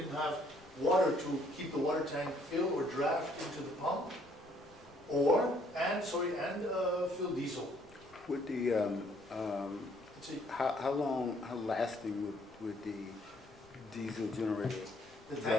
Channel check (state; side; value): noise; left; rumble, 26 dB below the sound